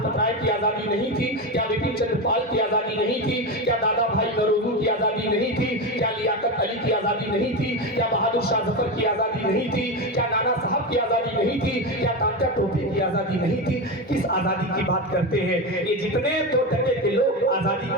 राय की आजादी नहीं थी? क्या बिपिन चंद्र पाल की आजादी नहीं थी? क्या दादा भाई नौरोजी की आजादी नहीं थी? क्या लियाकत अली की आजादी नहीं थी? क्या बहादुर शाह जफर की आजादी नहीं थी? क्या नाना साहब की आजादी नहीं थी? क्या तात्या टोपे की आजादी नहीं थी? किस आजादी की बात करते हैं ये जितने 2 टके के लोग आजादी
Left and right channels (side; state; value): both; normal; correlation 0.17